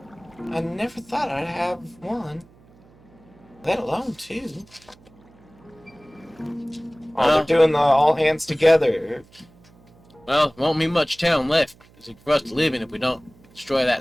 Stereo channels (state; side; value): noise; right; hum, 28 dB below the sound